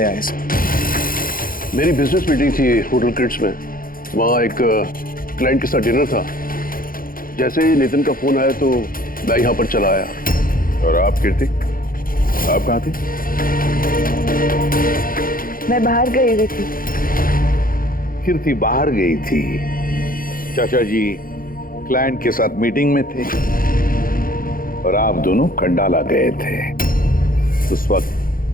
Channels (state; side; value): late; right; 0.41 ms